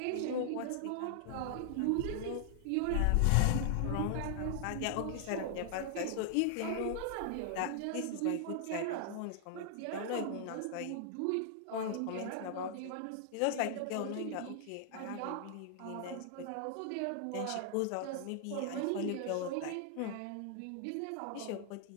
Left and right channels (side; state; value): both; different; correlation -0.01